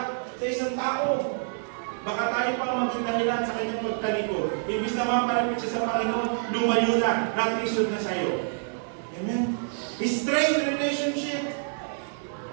sa isang tao. Baka tayo pa ang maging dahilan sa kanyang pagtalikod. Ibig naman malapit siya sa Panginoon, lumayo na, naglisod na sa iyo. Amen? Straight relationship.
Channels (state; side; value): silent; left; digital silence